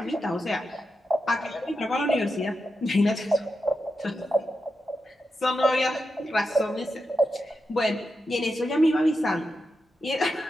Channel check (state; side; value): normal; both; correlation 0.88